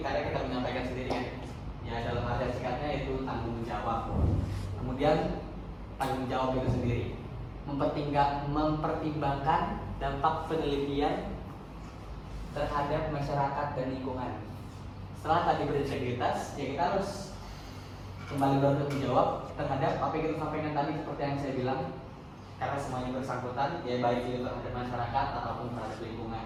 karena kita menyampaikan sendiri kan. Ya dalam arti singkatnya itu tanggung jawab. Kemudian tanggung jawab itu sendiri mempertimbangkan dampak penelitian terhadap masyarakat dan lingkungan. Setelah tadi berintegritas, ya kita harus kembali bertanggung jawab terhadap apa yang kita sampaikan tadi seperti yang saya bilang, karena semuanya bersangkutan, ya baik itu terhadap masyarakat ataupun terhadap lingkungan.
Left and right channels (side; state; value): both; identical; correlation 1.00